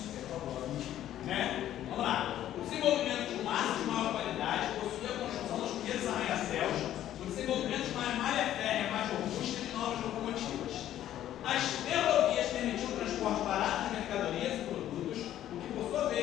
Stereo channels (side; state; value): right; quieter; 12.1 dB